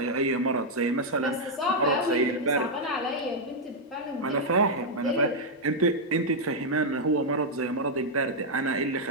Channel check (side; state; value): both; normal; correlation -0.03